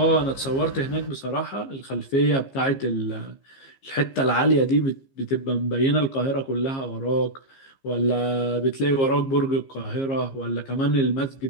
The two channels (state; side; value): late; right; 15 ms